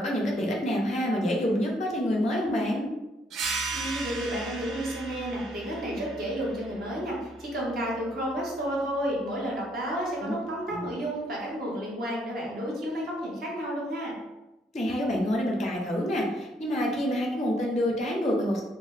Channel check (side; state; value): both; normal; correlation 0.69